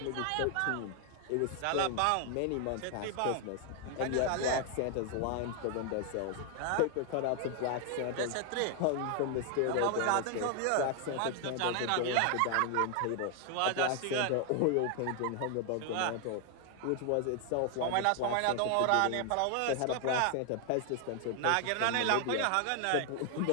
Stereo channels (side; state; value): both; different; correlation 0.00